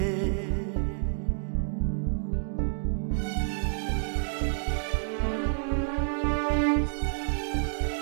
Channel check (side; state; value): left; silent; digital silence